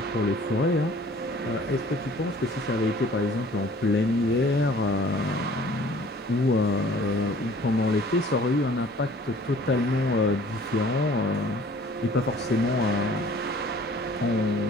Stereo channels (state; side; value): normal; both; correlation 0.52